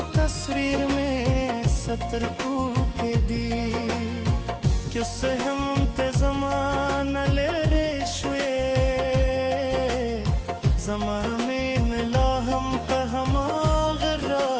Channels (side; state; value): both; identical; correlation 1.00